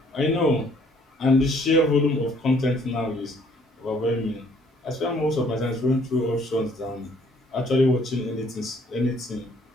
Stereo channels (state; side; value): normal; both; correlation 0.62